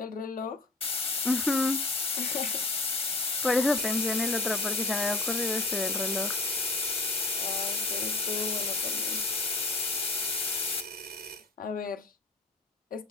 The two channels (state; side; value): quieter; right; 3.3 dB